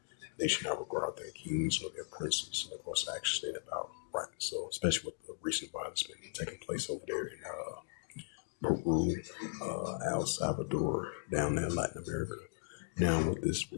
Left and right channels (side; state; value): right; silent; digital silence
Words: They should not regard their kings or their princes, and of course, actually state about right. So, especially with the recent violence been taking place over there in Peru, El Salvador, down there in Latin America. Now, with this